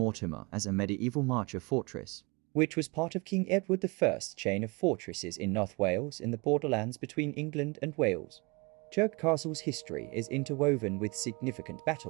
as a medieval marcher fortress, which was part of King Edward I's chain of fortresses in North Wales in the borderlands between England and Wales. Chirk Castle's history is interwoven with significant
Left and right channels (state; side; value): quieter; left; 27.9 dB